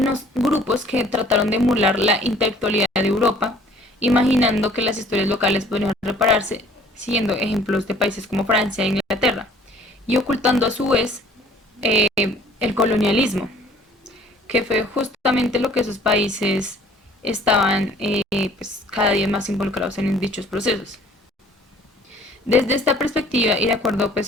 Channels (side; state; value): both; normal; correlation 0.55